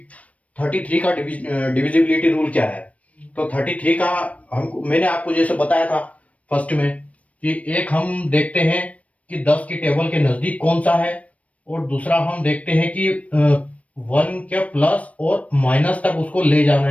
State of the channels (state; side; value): late; right; 0.066 ms